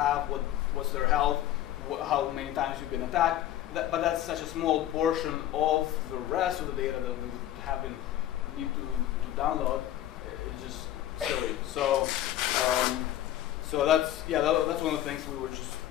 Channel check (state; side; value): quieter; right; 12.9 dB